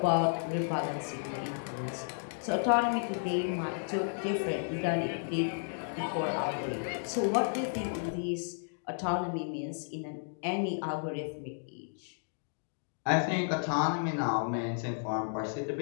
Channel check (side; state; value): right; silent; digital silence